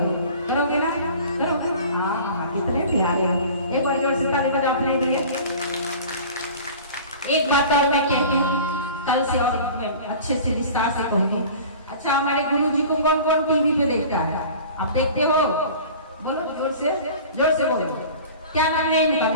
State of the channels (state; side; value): inverted; both; correlation -0.41